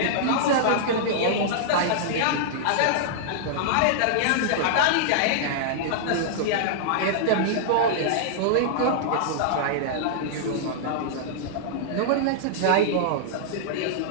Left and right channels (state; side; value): different; both; correlation -0.02